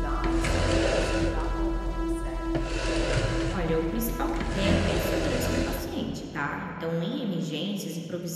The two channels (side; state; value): both; identical; correlation 1.00